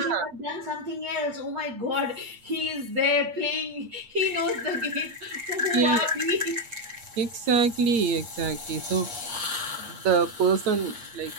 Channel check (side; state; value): left; late; 8.6 ms